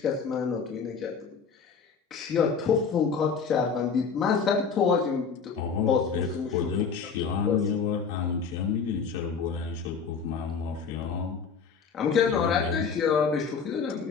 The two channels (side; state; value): right; quieter; 5.8 dB